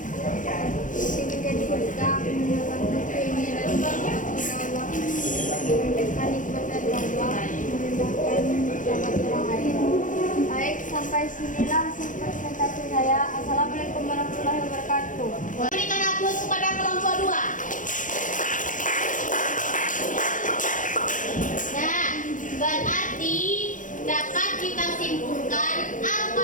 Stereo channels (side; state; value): right; late; 0.38 ms